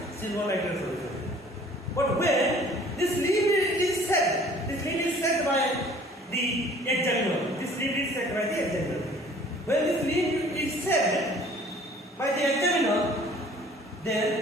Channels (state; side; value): normal; both; correlation 0.52